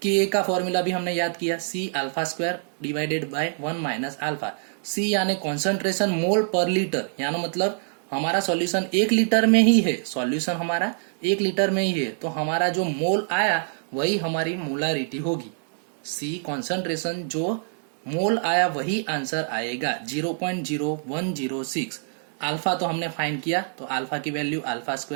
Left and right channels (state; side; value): silent; left; digital silence